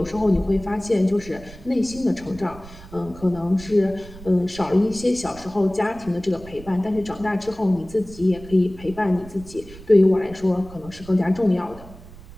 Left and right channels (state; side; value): noise; right; rumble, 18 dB below the sound